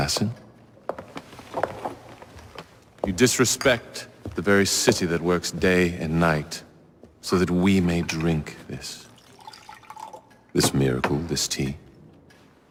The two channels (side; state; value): both; identical; correlation 1.00